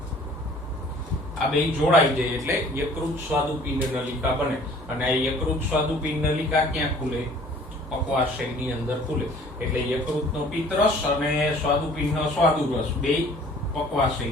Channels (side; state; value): both; normal; correlation 0.52